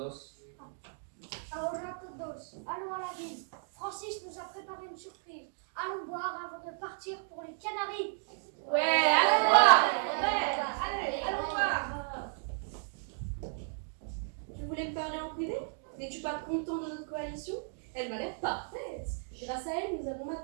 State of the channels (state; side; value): silent; left; digital silence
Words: Ahora todos, allons à la ville. Francis nous a préparé une surprise. Allons boire avant de partir pour les Canaries. Ouais, allons voir. Ouais, allez, allons voir. Tu voulais me parler en privé? N'es-tu pas content de notre coalition? Elle m'a l'air parfaite. Grâce à elle, nous avons